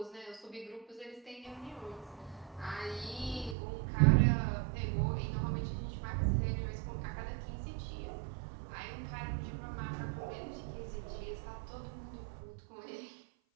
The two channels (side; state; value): left; drops out; at 3.6 s